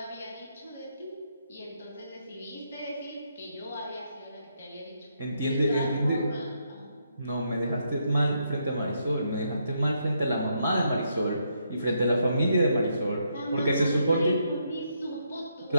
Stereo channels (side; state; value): both; inverted; correlation -0.77